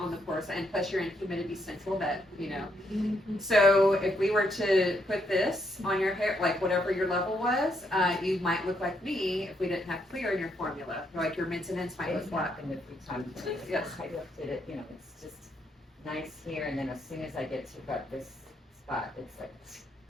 the pore side, and plus you're in humidity central, that, you know. So if we were to put this on your hair, like whatever your level was, you might look like me if we didn't have clear in your formula. Like your mints and ends might look It's black. happened a few times. Yes. I looked at it, you know, it's just nice here, and then as soon as I get to about this spot, it's like,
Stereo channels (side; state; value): both; normal; correlation 0.75